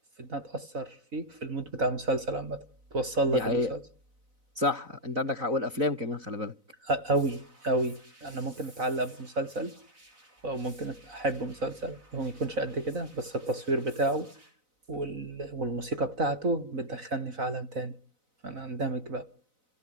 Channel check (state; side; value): late; left; 4.0 ms